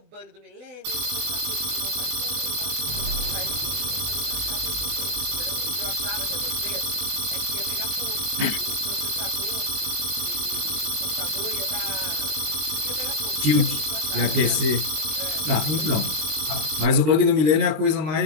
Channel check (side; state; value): left; late; 20 ms